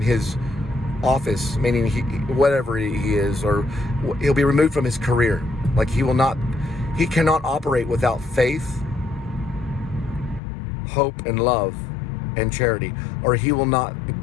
his office, meaning whatever he is, or he'll be removed from his career. Like he cannot operate without faith, hope, and love, and charity, or he will not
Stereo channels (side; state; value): right; drops out; at 10.4 s